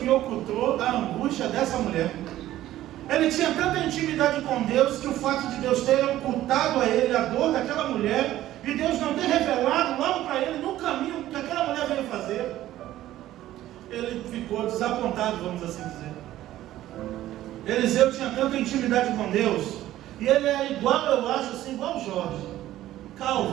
ocultou a angústia dessa mulher. Ele tinha tanta intimidade com Deus, que o fato de Deus ter ocultado a ele a dor daquela mulher, e Deus não ter revelado logo para ele no caminho que aquela mulher veio fazer, ele ficou desapontado, vamos assim dizer. Eliseu tinha tanta intimidade com Deus, e ele é igual, eu acho assim, igual o Jorge,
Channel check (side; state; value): left; quieter; 14.1 dB